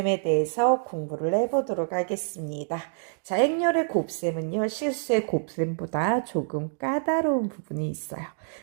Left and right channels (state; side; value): silent; left; digital silence